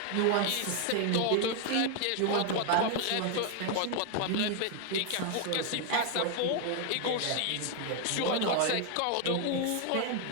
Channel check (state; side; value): different; both; correlation 0.00